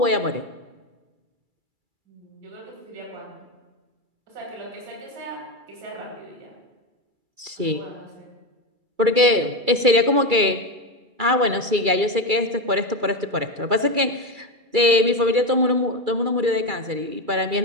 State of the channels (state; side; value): late; left; 2.3 ms